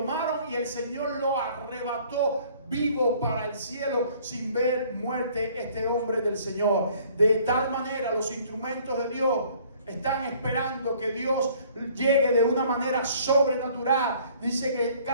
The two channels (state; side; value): inverted; both; correlation -0.57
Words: y el Señor lo arrebató vivo para el cielo sin ver muerte este hombre del Señor. De tal manera los instrumentos de Dios están esperando que Dios llegue de una manera sobrenatural. Dice que